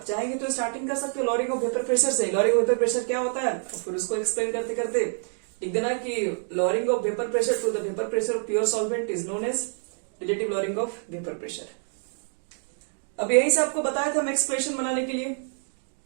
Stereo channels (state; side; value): silent; left; 55 dB below the other